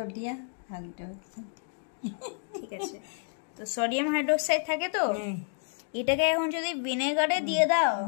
hydroxide, ঠিক আছে। তো সোডিয়াম হাইড্রোক্সাইড থাকে। তো এটাকে এখন যদি ভিনেগারে দিয়ে দাও,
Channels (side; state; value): right; silent; 58 dB below the other